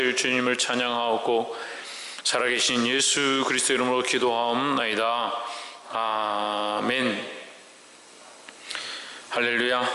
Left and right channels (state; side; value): identical; both; correlation 1.00